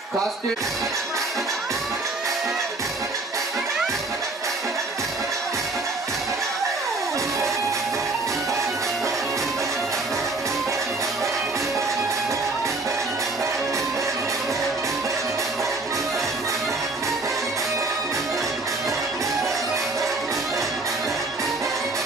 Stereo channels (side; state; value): left; quieter; 3.3 dB